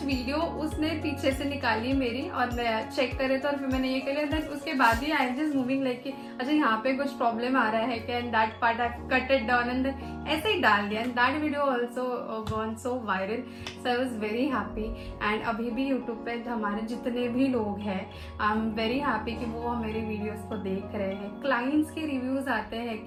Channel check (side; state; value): both; identical; correlation 1.00